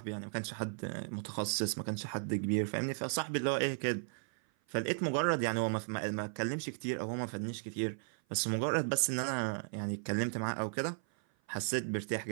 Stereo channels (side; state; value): left; silent; 54 dB below the other